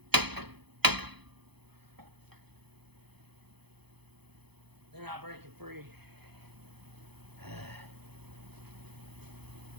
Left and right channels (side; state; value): left; late; 0.98 ms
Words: They're not breaking free.